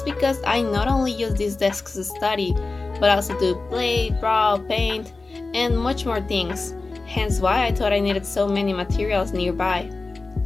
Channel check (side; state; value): right; quieter; 3.6 dB